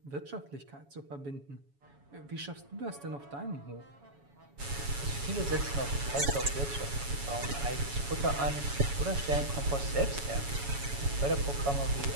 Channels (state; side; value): late; left; 7.1 ms